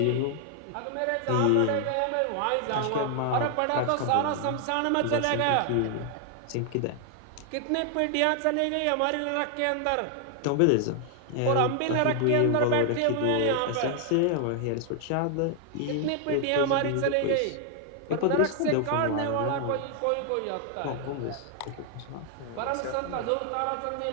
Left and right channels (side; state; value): both; different; correlation 0.00